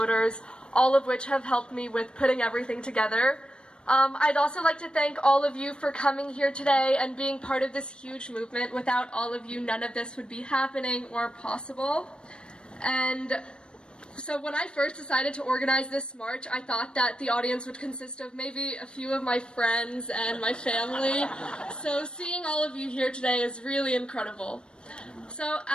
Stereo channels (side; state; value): right; late; 0.054 ms